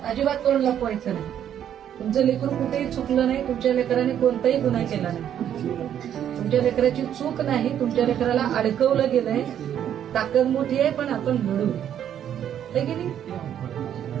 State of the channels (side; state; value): left; quieter; 9.9 dB